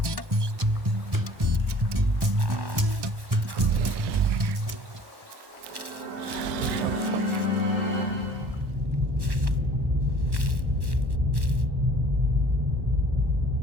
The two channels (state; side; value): late; left; 1.1 ms